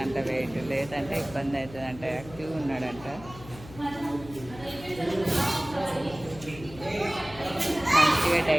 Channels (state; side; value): noise; left; hum, 17 dB below the sound